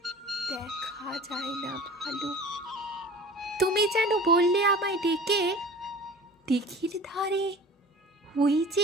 দেখা যায় না ভালো। তুমি যেন বললে আমায় ডেকে, দিঘির ধারে ওই যে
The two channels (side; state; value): both; normal; correlation 0.41